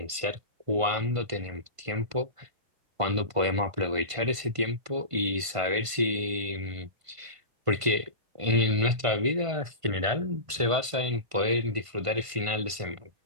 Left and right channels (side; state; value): left; late; 1.5 ms